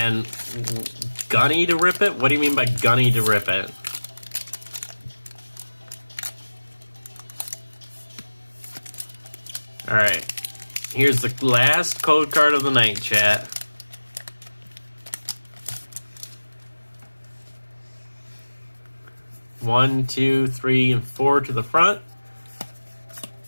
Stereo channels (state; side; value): inverted; both; correlation -1.00